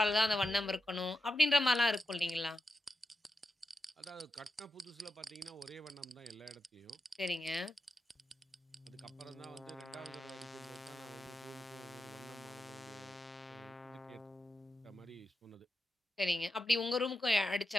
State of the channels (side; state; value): both; normal; correlation 0.89